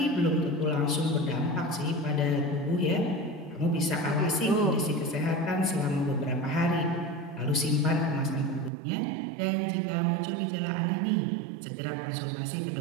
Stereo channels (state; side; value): drops out; left; at 8.7 s